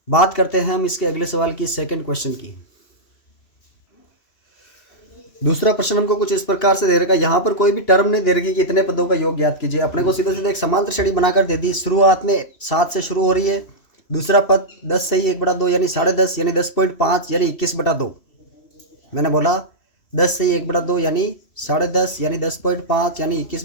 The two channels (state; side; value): late; right; 3.1 ms